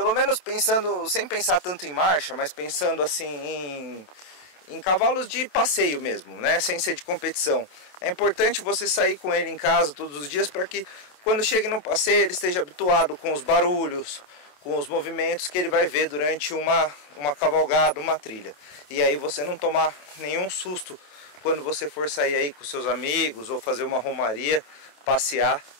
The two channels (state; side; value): late; right; 27 ms